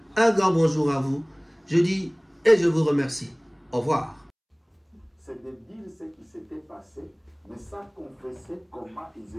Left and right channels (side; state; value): both; identical; correlation 1.00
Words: un grand bonjour à vous. Je dis et je vous remercie. Au revoir. C'est débile ce qui s'était passé, mais ça confessait comment ils